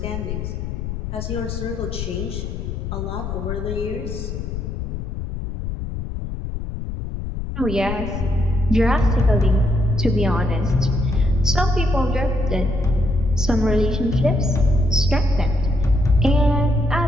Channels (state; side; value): noise; left; rumble, 5 dB below the sound